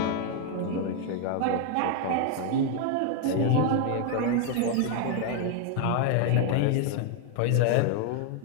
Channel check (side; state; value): both; different; correlation 0.00